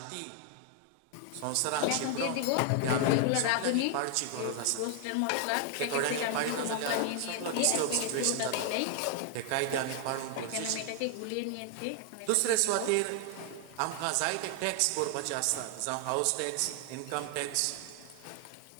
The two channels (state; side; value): different; both; correlation 0.00